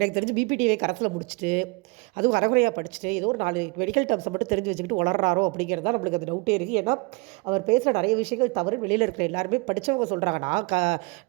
தெரிஞ்சு பிபிடிஏ கரத்தில் முடிச்சுட்டு, அதுவும் அரைகுறையாக படிச்சுட்டு, ஏதோ ஒரு 4 மெடிக்கல் டேர்ம்ஸை மட்டும் தெரிஞ்சு வச்சுக்கிட்டு வளர்றாரோ அப்படிங்கிறது தான் நம்மளுக்கு அந்த டவுட்டே இருக்குது. ஏன்னா அவர் பேசுகிற நிறைய விஷயங்கள் தவறு வெளியில் இருக்கிற எல்லாருமே படித்தவங்க சொல்கிறாங்க. நான்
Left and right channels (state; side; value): quieter; left; 29.0 dB